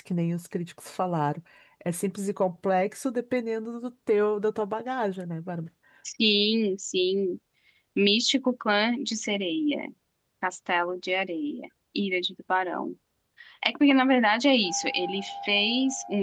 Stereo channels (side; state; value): both; identical; correlation 1.00